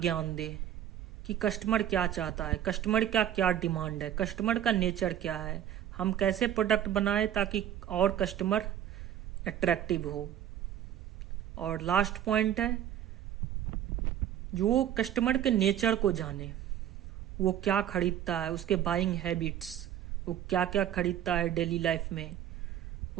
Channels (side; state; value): left; quieter; 10.9 dB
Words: दे कि कस्टमर क्या चाहता है, कस्टमर का क्या डिमांड है, कस्टमर का नेचर क्या है, हम कैसे प्रोडक्ट बनाए ताकि और कस्टमर अट्रैक्टिव हो। और लास्ट पॉइंट है जो कस्टमर के नेचर को जाने, वो क्या खरीदता है, उसके बाइंग हैबिट्स, वो क्या क्या खरीदता है डेली लाइफ में,